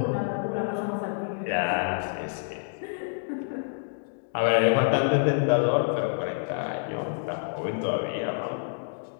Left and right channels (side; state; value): right; silent; digital silence